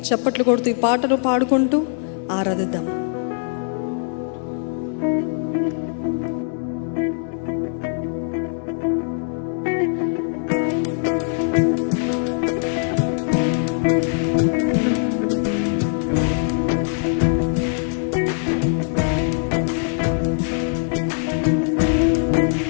చప్పట్లు కొడుతూ ఈ పాటను పాడుకుంటూ ఆరాధిద్దాం.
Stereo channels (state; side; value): silent; right; digital silence